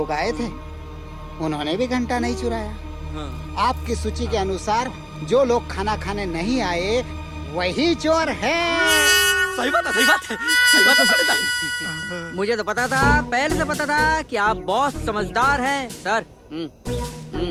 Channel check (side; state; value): both; identical; correlation 1.00